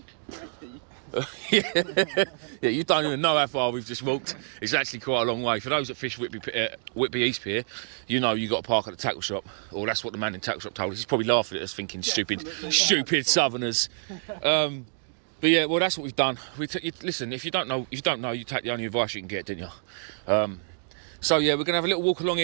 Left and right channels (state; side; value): silent; left; digital silence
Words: Yeah, you don't even know how far we've just walked. It's actually quite a long way. For those that fish Whitby East Pier, you know you got to park at the tackle shop. Or that's what the man in the tackle shop told us. He's probably laughing at us thinking stupid southerners. But yeah, well, that's what we've done. Listen, if you don't know, you take the only advice you can get, didn't you? So yeah, we're going to have a little walk along